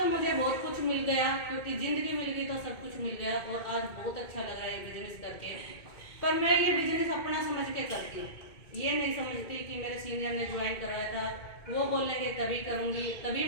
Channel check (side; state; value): right; late; 2.2 ms